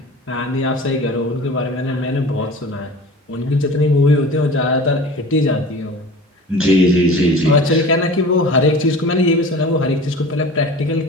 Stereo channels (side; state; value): both; normal; correlation 0.39